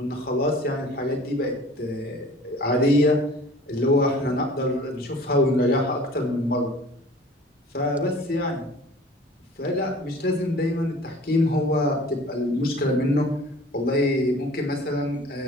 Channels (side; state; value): both; normal; correlation 0.47